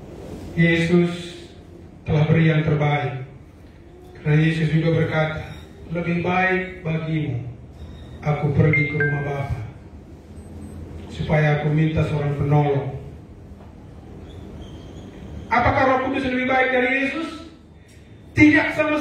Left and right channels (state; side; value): identical; both; correlation 1.00